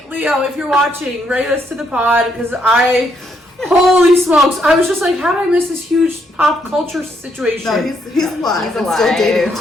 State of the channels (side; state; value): both; normal; correlation 0.74